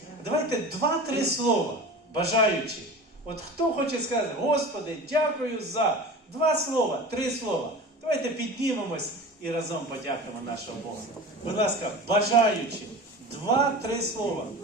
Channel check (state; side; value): normal; both; correlation 0.34